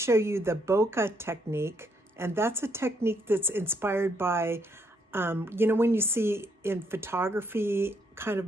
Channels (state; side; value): normal; both; correlation 0.73